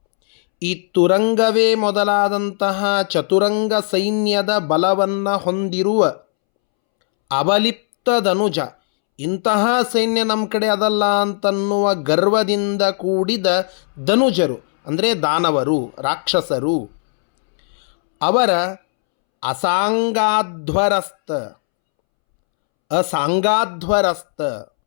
ಈ ತುರಂಗವೇ ಮೊದಲಾದಂತಹ ಚತುರಂಗ ಸೈನ್ಯದ ಬಲವನ್ನು ಹೊಂದಿರುವ ಅವಲಿಪ್ತ ಧನುಜ, ಇಂತಹ ಸೈನ್ಯ ನಮ್ಮ ಕಡೆ ಅದಲ್ಲ ಅಂತನ್ನುವ ಗರ್ವದಿಂದ ಕೂಡಿದ ಧನುಜರು, ಅಂದರೆ ದಾನವರು, ರಾಕ್ಷಸರು. ಅವರ ಅಸಾಂಗಾಧ್ವರಸ್ತ, ಅಸಾಂಗಾಧ್ವರಸ್ತ,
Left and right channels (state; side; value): silent; right; 67 dB below the other